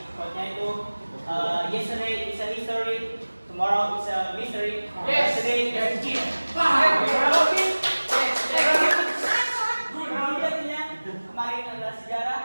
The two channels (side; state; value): both; inverted; correlation -1.00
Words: Quote-nya itu yesterday is a history, tomorrow is a mystery, yesterday is a cheat. Kemarin adalah